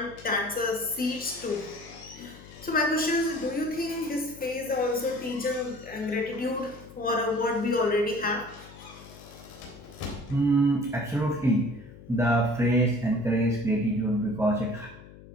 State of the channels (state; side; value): noise; left; hum, 19 dB below the sound